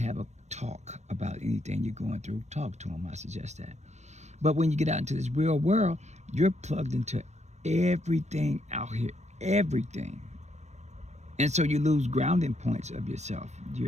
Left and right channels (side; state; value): left; late; 0.33 ms